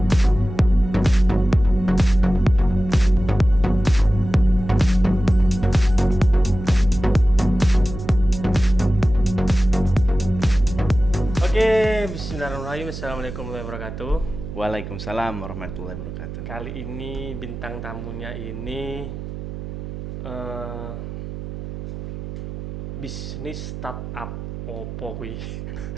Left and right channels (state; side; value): noise; right; hum, 9 dB below the sound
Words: Oke, bismillahirrahmanirrahim. Assalamualaikum warahmatullahi wabarakatuh. Waalaikumsalam warahmatullahi wabarakatuh. Kali ini bintang tamunya ini bisnis startup opo kuwi.